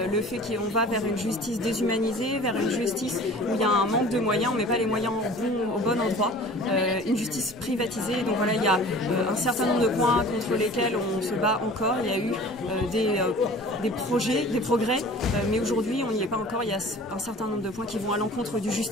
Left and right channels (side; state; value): both; normal; correlation 0.44